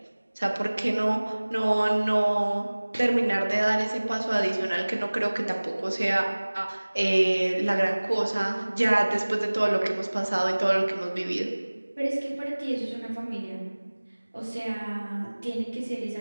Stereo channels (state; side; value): inverted; both; correlation -1.00